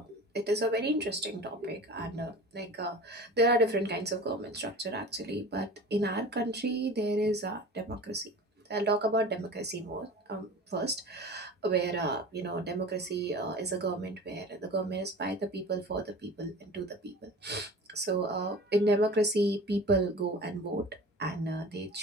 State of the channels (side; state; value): both; normal; correlation 0.38